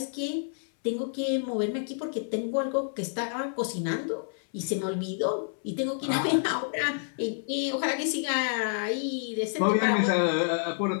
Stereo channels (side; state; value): right; silent; 59 dB below the other